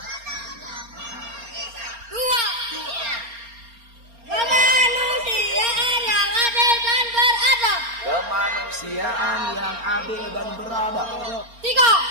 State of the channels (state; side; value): late; left; 4.3 ms